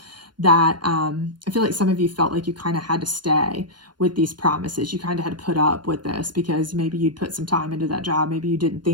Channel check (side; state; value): left; late; 0.71 ms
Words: that I feel like some of you felt like you kind of had to stay with these promises. You kind of had to put up with this because maybe you'd put some time into that job. Maybe you didn't